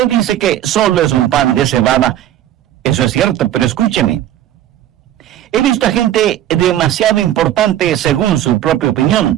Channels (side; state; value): left; quieter; 12.0 dB